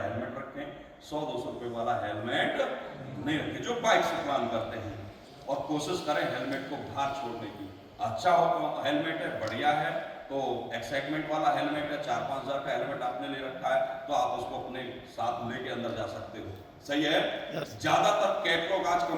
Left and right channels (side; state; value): both; identical; correlation 1.00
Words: हेलमेट रखें, 100-200 रुपये वाला हेलमेट नहीं रखें जो बाइक से प्लान करते हैं, और कोशिश करें हेलमेट को बाहर छोड़ने की। अच्छा हो हेलमेट है, बढ़िया है, तो एक्साइटमेंट वाला हेलमेट है, 4-5 हज़ार का हेलमेट आपने ले रखा है, तो आप उसको अपने साथ लेके अंदर जा सकते हो, सही है। ज्यादातर कैटलॉग, आज